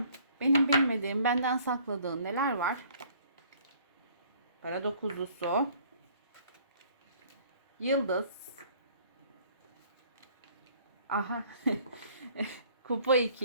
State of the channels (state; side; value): inverted; both; correlation -0.57